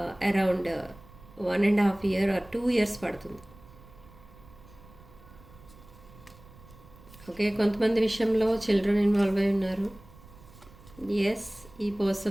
అరౌండ్ 1.5 year or 2 years పడుతుంది. ఓకే, కొంతమంది విషయంలో చిల్డ్రన్ ఇన్వాల్వ్ అయి ఉన్నారు. ఎస్, ఈ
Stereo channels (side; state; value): right; noise; rumble, 22 dB below the sound